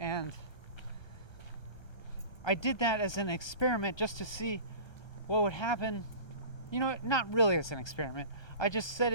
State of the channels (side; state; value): right; late; 1.2 ms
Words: I did that as an experiment just to see what would happen. Not really as an experiment. I just said